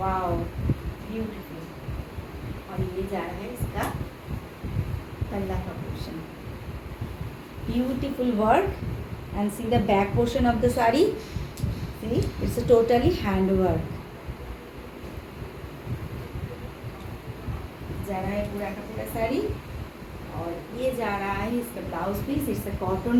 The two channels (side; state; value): both; identical; correlation 1.00